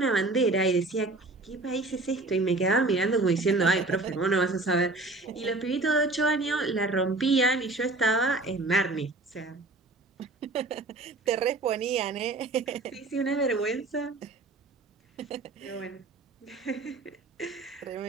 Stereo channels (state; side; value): quieter; left; 3.2 dB